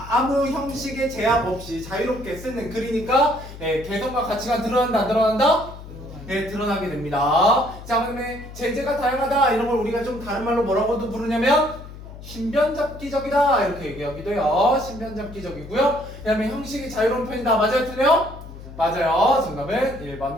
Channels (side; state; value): left; noise; hum, 14 dB below the sound